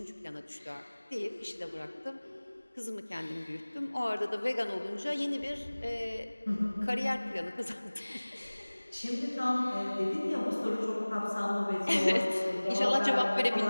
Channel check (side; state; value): both; inverted; correlation -1.00